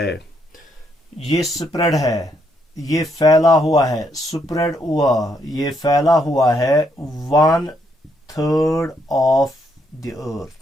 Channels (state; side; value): normal; both; correlation 0.75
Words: ये स्प्रेड है, ये फैला हुआ है, स्प्रेड हुआ, ये फैला हुआ है 1/3 of the earth.